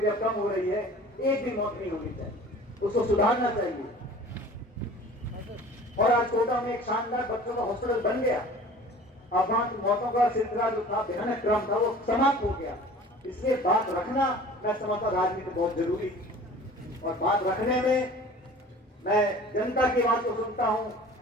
थी, अब कम हो रही है। एक भी मौत नहीं होनी चाहिए, उसको सुधारना चाहिए। और आज कोटा में एक शानदार बच्चों का हॉस्पिटल बन गया। अब वहां की मौतों का सिलसिला जो था, भयानक क्रम था, वो समाप्त हो गया। इसलिए बात रखना, मैं समझता राजनीति बहुत जरूरी है। और बात रखने में मैं जनता की बात को सुनता हूं,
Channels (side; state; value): both; normal; correlation 0.44